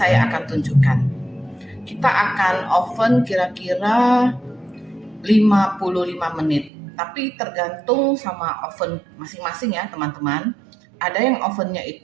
akan tunjukkan. Kita akan oven kira-kira 55 menit. Tapi tergantung sama oven masing-masing ya, teman-teman. Ada yang ovennya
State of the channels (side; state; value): left; drops out; at 6.7 s